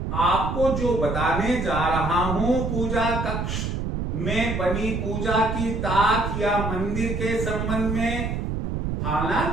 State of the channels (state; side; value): noise; right; rumble, 2 dB below the sound